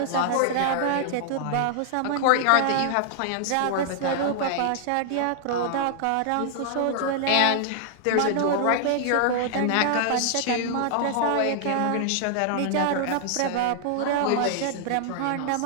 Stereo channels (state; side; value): different; both; correlation -0.01